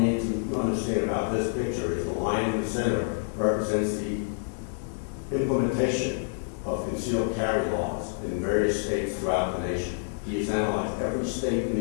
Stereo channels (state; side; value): silent; right; 59 dB below the other